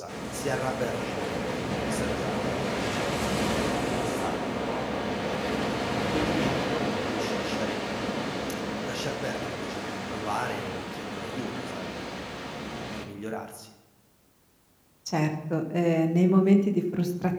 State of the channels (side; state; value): both; identical; correlation 1.00